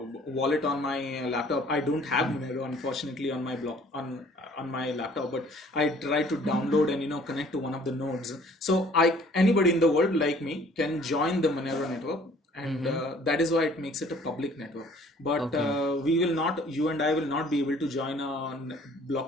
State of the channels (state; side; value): normal; both; correlation 0.55